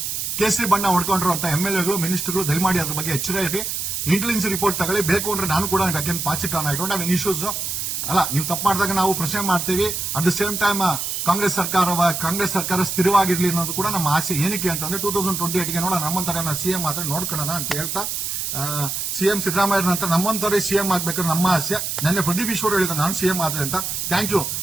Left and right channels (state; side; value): noise; right; hiss, 3 dB below the sound